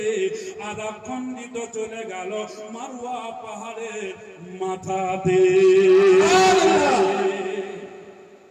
আর এক খণ্ডিত চলে গেল মারওয়া পাহাড়ের মাথাতে।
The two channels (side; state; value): both; identical; correlation 1.00